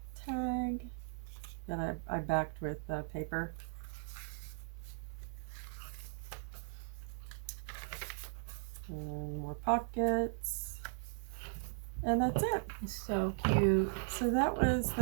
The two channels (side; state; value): left; silent; digital silence